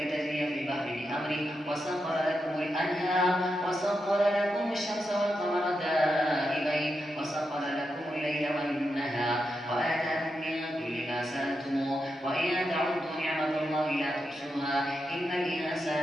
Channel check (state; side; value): normal; both; correlation 0.86